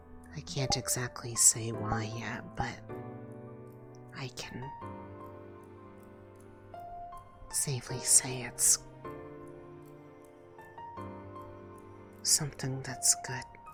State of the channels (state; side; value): identical; both; correlation 1.00